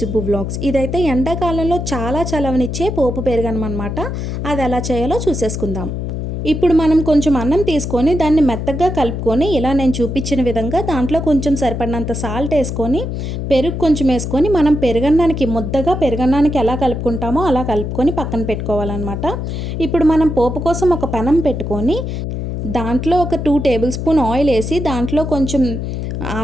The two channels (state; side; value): noise; left; hum, 4 dB below the sound